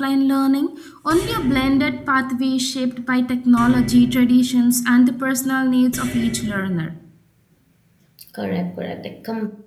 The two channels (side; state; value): both; identical; correlation 1.00